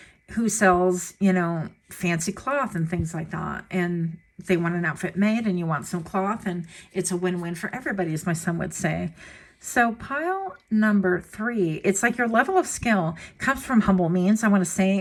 sells, you know, fancy cloth and things like that. And they want an outfit made, and you want some cloth, and it's a win-win for everybody, as my son would say. So pile number 3, it's like your level of skill comes from humble means, I want to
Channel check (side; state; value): both; identical; correlation 1.00